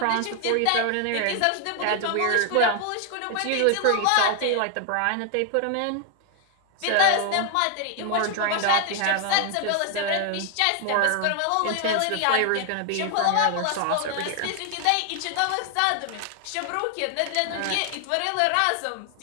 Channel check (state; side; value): different; both; correlation 0.00